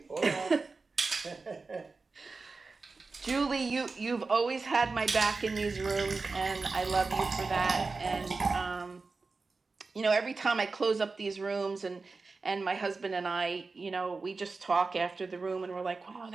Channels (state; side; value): quieter; left; 4.0 dB